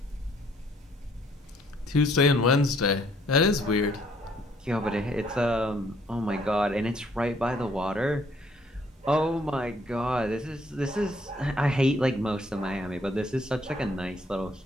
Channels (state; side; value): normal; both; correlation 0.65